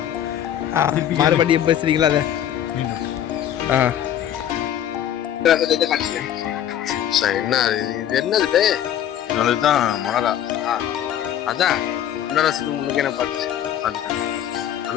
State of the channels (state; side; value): quieter; right; 10.6 dB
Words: மறுபடியும் பேசுறீங்களா அதை? என்ன இது என்னது? இதுதான் மொளகா. அதான் ரசத்துக்கு முன்னுக்கே நான் பார்த்துட்டேன்.